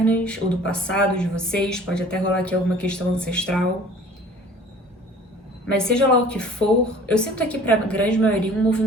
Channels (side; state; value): both; normal; correlation 0.48